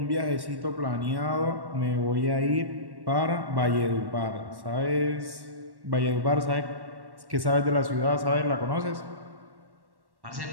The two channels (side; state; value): left; late; 1.1 ms